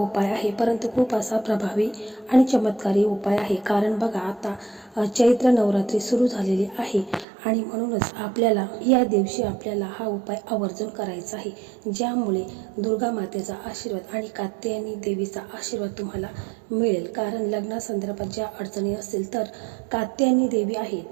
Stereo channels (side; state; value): left; drops out; at 7.2 s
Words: आहे, परंतु खूप असा प्रभावी आणि चमत्कारी उपाय आहे. कारण बघा, आता चैत्र नवरात्री सुरू झालेली आहे आणि म्हणूनच आपल्याला या दिवशी आपल्याला हा उपाय आवर्जून करायचा आहे, ज्यामुळे दुर्गा मातेचा आशीर्वाद आणि कात्यायनी देवीचा आशीर्वाद तुम्हाला मिळेल. कारण लग्नासंदर्भात ज्या अडचणी असतील, तर कात्यायनी देवी आहे,